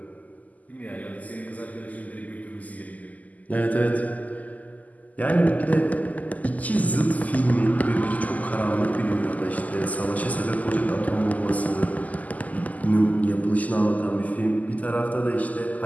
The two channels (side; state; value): right; late; 0.077 ms